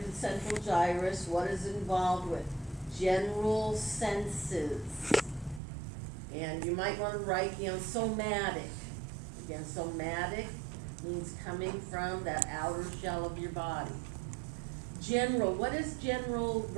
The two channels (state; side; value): drops out; left; at 5.6 s